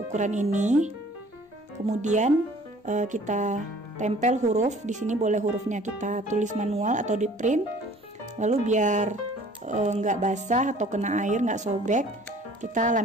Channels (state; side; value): normal; both; correlation 0.52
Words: ini. Kemudian kita tempel huruf. Di sini boleh hurufnya kita tulis manual atau di print. Lalu biar nggak basah atau kena air, nggak sobek, kita